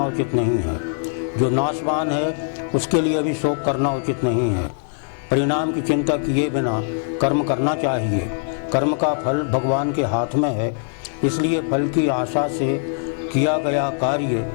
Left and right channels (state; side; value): silent; right; digital silence